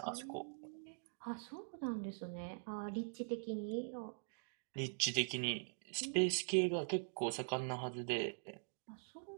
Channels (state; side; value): silent; left; digital silence